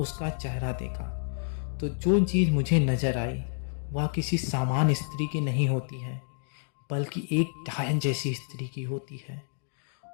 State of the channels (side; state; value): right; silent; digital silence